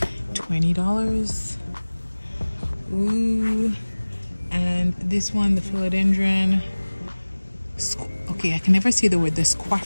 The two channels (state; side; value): inverted; both; correlation -1.00